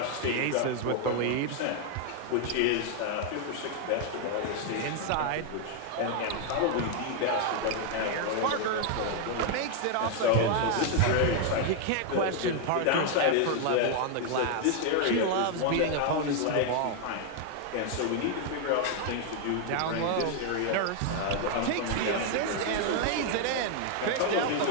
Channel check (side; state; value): both; different; correlation 0.00